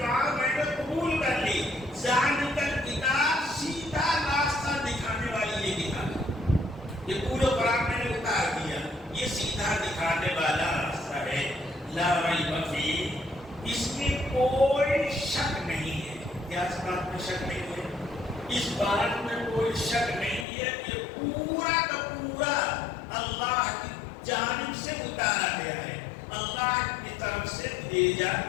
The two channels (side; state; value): right; drops out; at 20.5 s